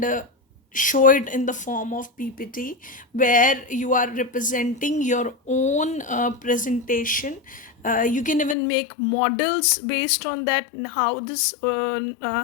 show it in the form of PPT, where you are representing your own presentation. You can even make models based on that, and how this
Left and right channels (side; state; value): right; drops out; at 8.6 s